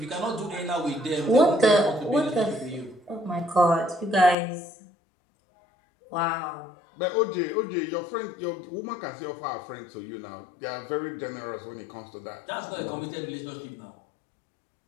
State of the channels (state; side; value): drops out; right; at 4.4 s